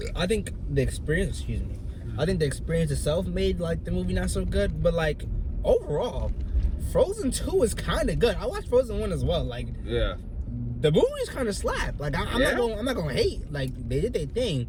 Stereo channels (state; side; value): identical; both; correlation 1.00